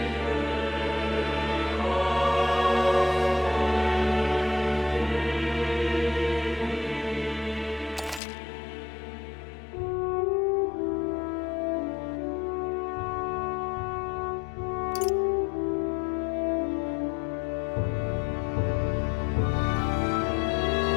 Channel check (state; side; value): drops out; right; at 8.2 s